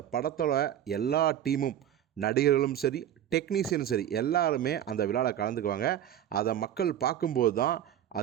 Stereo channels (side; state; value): left; quieter; 10.8 dB